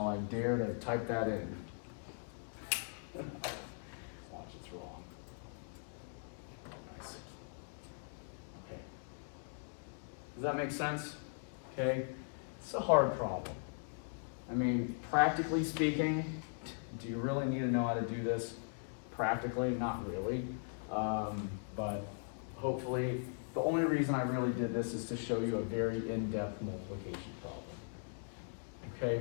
I dare to type that in? Watch, it's wrong. Nice. Okay. Does that make sense? Okay. It's a hard problem. I mean, practically speaking, do you really need to know how to do this? Practically, not really. But hopefully, the only reason I really did this is to show you a very in-depth multiplication problem.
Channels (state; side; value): silent; right; digital silence